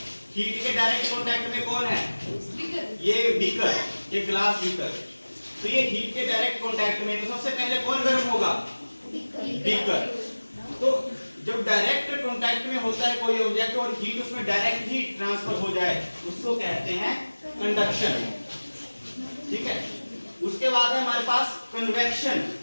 हीट के डायरेक्ट कांटेक्ट में कौन है? ये बीकर, ये ग्लास बीकर। तो ये हीट के डायरेक्ट कांटेक्ट में, तो सबसे पहले कौन गर्म होगा? बीकर। तो जब डायरेक्ट कांटेक्ट में होता है कोई ऑब्जेक्ट और हीट उसमें डायरेक्ट ही ट्रांसफर हो जाए, उसको कहते हैं कंडक्शन। ठीक है। उसके बाद है हमारे पास कन्वेक्शन।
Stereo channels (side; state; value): both; inverted; correlation -1.00